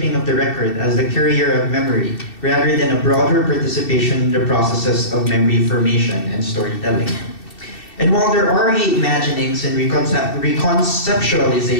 of the record as the carrier of memory, rather than a broader participation in the processes of memory formation and storytelling. And while there are reimaginings and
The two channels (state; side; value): late; right; 2.7 ms